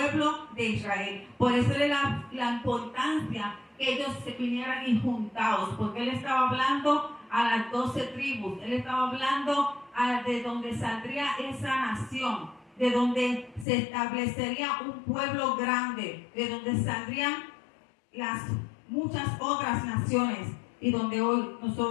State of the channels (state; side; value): drops out; right; at 13.7 s